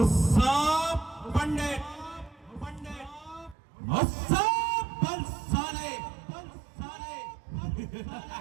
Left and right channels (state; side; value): drops out; left; at 3.6 s